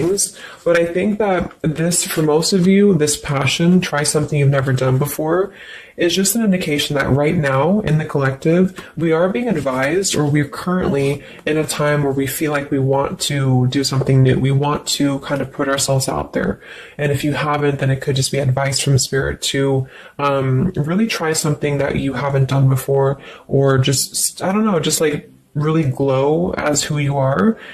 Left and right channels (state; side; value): identical; both; correlation 1.00